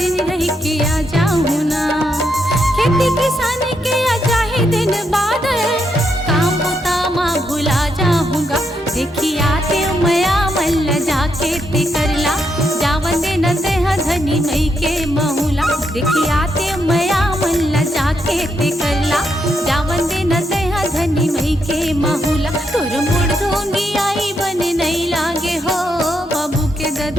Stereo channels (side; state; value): both; normal; correlation 0.80